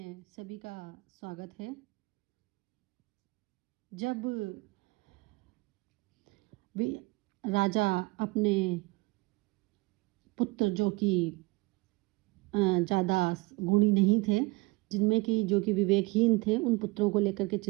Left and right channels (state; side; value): quieter; left; 23.9 dB